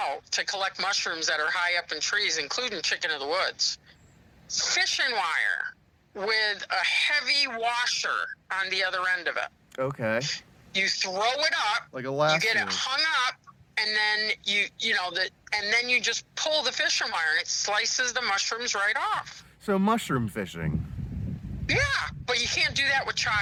to collect mushrooms that are high up in trees, including chicken of the woods. Fishing wire with a heavy washer on the other end of it. Okay. You throw it up, like a lasso. You get it hung up, and then and then you just pull the fishing wire, and it slices the mushrooms right off. So mushroom fishing. Yeah, but you can't do that with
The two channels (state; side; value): identical; both; correlation 1.00